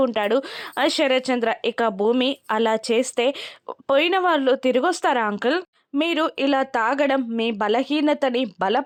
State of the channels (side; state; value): both; identical; correlation 1.00